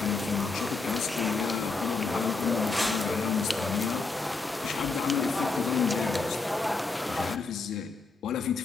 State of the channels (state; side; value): quieter; right; 3.9 dB